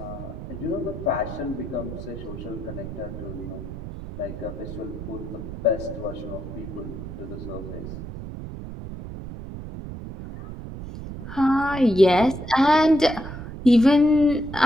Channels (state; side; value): noise; right; rumble, 10 dB below the sound